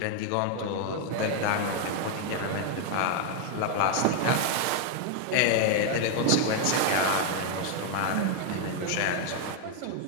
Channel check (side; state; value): both; different; correlation 0.00